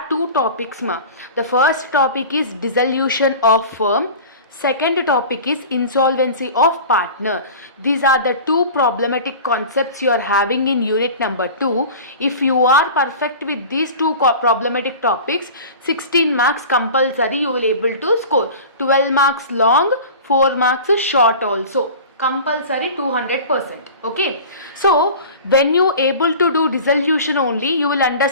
two topics ma. The first topic is dissolution of firm, second topic is insolvency of partner. These are the two problematic concepts you are having in unit number 2. If you are perfect with these two problematic topics, 16 marks compulsory you will able to score. 12 marks long, 4 marks short also. Compulsory 200%. Okay, so when you able to do dissolution only, you will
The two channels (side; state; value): both; inverted; correlation -0.37